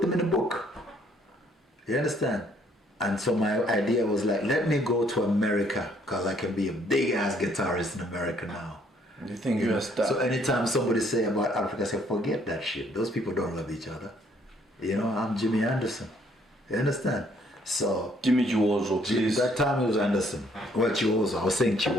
them in a book. You understand? And so my idea was like, let me go to America because I can be a big ass guitarist in America now. You think you're a star? So anytime somebody say about Africa, I say, forget that shit. Those people don't love each other. You know, I'm Jimmy Andersen. You understand? So Jimmy Chiwozo, please. that time it was Andersen. Well, Chiwozo. I was saying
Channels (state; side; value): normal; both; correlation 0.65